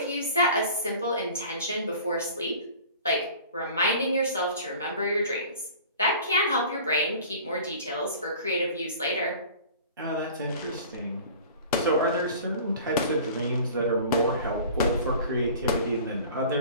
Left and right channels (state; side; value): inverted; both; correlation -0.43